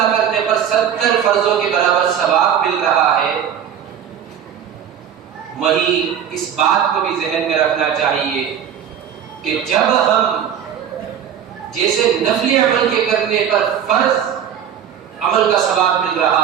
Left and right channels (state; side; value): quieter; left; 8.9 dB